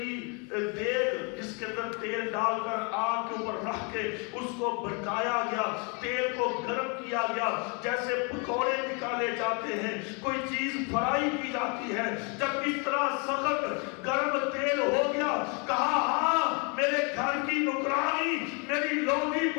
دیگ جس کے اندر تیل ڈال کر آگ کے اوپر رکھ کے اس کو بھڑکایا گیا، تیل کو گرم کیا گیا، جیسے پکوڑے نکالے جاتے ہیں، کوئی چیز فرائی کی جاتی ہے۔ جب اس طرح سخت گرم تیل ہو گیا، کہا ہاں میرے گھر کی نوکرانی میری لونڈی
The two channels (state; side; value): quieter; right; 34.3 dB